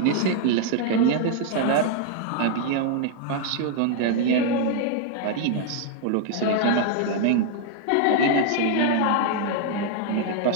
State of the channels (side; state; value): both; different; correlation 0.00